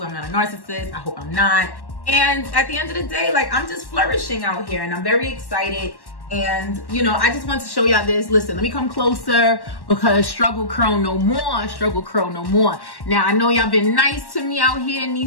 I'm not a narcissist. I hope I'm not. And at the end of the day, like, I'm just flourishing out here and I'm very excited. And, you know, I just want to show y'all this. Listen, let me come closer because struggle curl no more, struggle curl no more. Now, I know y'all been nice to me out here in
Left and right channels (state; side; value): late; right; 1.1 ms